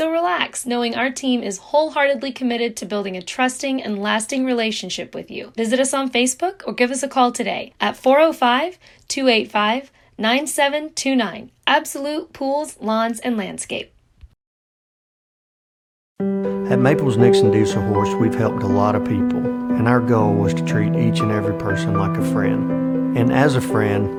relax, knowing our team is wholeheartedly committed to building a trusting and lasting relationship with you. Visit us on Facebook or give us a call today at 405-285-9729. Absolute Pools, Lawns, and Landscape. At Maples Nixon Diesel Horse, we've helped a lot of people, and our goal was to treat each and every person like a friend. And as a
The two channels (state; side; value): identical; both; correlation 1.00